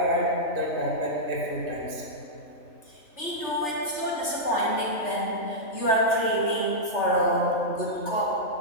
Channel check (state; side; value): late; right; 3.4 ms